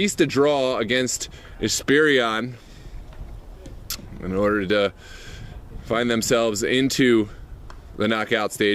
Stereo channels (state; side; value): identical; both; correlation 1.00